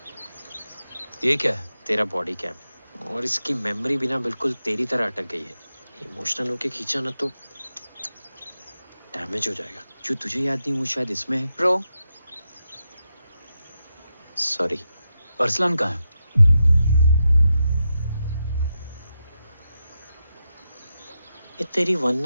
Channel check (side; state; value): both; inverted; correlation -0.87